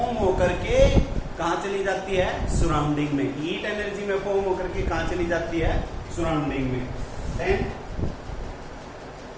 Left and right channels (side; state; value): both; identical; correlation 1.00